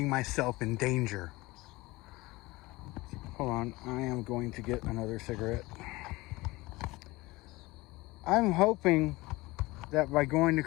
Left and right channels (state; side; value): quieter; right; 21.2 dB